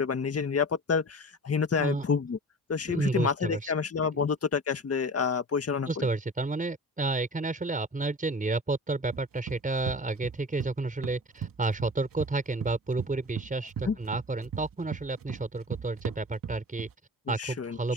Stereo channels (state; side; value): normal; both; correlation 0.36